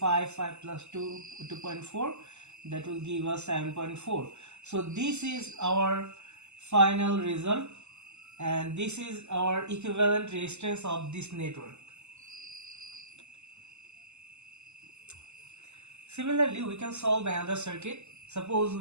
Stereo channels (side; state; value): left; late; 0.82 ms